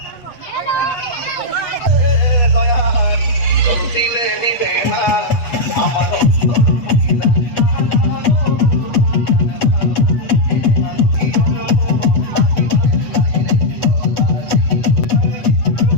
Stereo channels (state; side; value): late; right; 7.9 ms